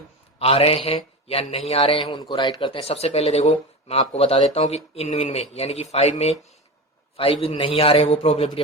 आ रहे हैं या नहीं आ रहे हैं उनको राइट करते हैं। सबसे पहले देखो मैं आपको बता देता हूँ कि इन में यानी कि 5 में 5 नहीं आ रहे हैं, वो प्रोबेबिलिटी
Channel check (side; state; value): both; normal; correlation 0.25